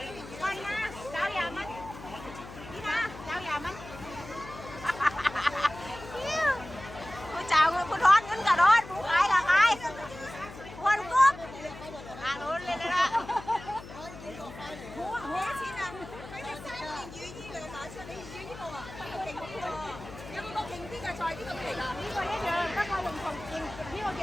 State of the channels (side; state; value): left; noise; hum, 14 dB below the sound